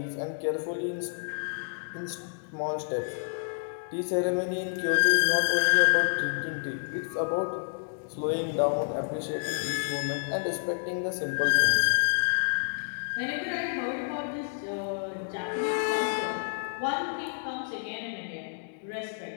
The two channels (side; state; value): right; silent; digital silence